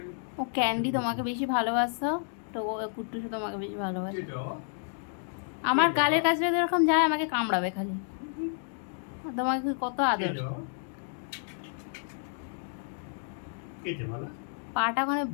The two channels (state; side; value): silent; right; digital silence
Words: ও ক্যান্ডি তোমাকে বেশি ভালোবাসতো, তো ও কুট্টুসু তোমাকে বেশি ভালোবাসে। কেটো আমার গালের কাছে যদি এরকম যায় আমাকে কামড়াবে খালি। আর তোমাকে কত আদর। কেটো কেটে বলা পাটা ওখানে